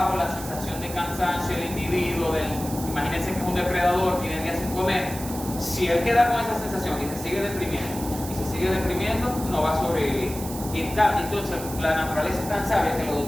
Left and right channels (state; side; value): noise; right; hiss, 11 dB below the sound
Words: la sensación de cansancio del individuo, imagínense que es un depredador, tiene días sin comer. Si él queda con esa sensación y se sigue deprimiendo, no va a sobrevivir. Y entonces la naturaleza es tan sabia que lo